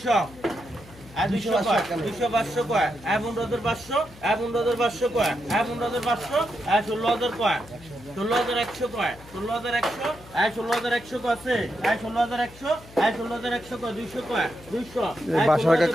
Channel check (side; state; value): left; noise; hum, 21 dB below the sound